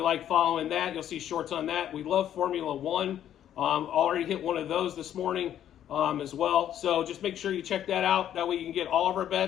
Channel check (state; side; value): quieter; right; 10.7 dB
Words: like following that, you'll see shorts on that. We love Formula One. Already hit one of those this morning as well. So just make sure you check that out. That way you can get all of our